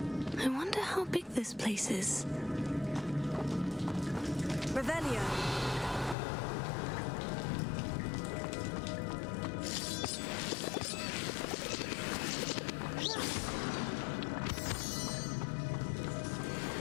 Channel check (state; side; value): drops out; right; at 6.2 s